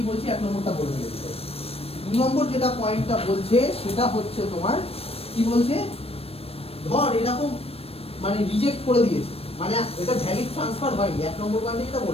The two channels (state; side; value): late; right; 0.28 ms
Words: বলছি, 1 নম্বরটা বলতে গেছে। 2 নম্বর যেটা পয়েন্টটা বলছে সেটা হচ্ছে তোমার কি বলছে, ধর এরকম মানে রিজেক্ট করে দিয়েছে, মানে এটা ভ্যালিড ট্রান্সফার হয়নি। 1 নম্বর পয়েন্টে যেটা